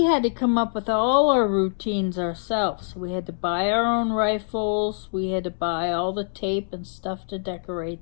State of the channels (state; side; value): silent; right; 62 dB below the other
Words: had to come up with all our routines ourselves. We had to buy our own rifles, we had to buy all the tape and stuff to